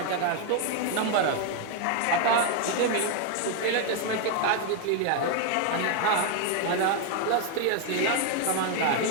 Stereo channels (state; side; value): different; both; correlation 0.01